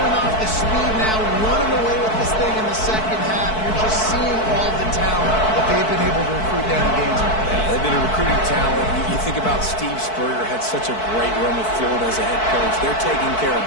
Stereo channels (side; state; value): right; late; 4.6 ms